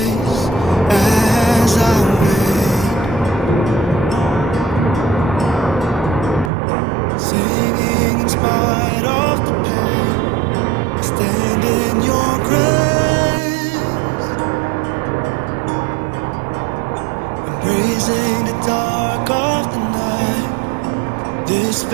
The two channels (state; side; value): drops out; left; at 6.5 s